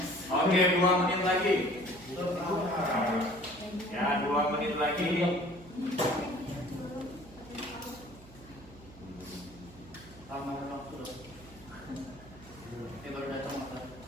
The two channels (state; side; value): noise; right; hum, 21 dB below the sound